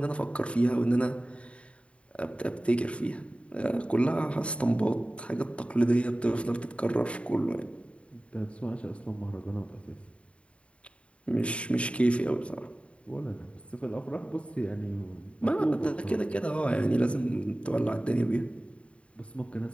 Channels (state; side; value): late; right; 0.061 ms